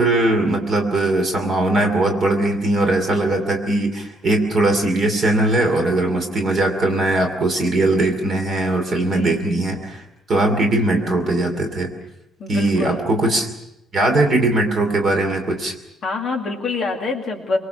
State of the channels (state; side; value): normal; both; correlation 0.69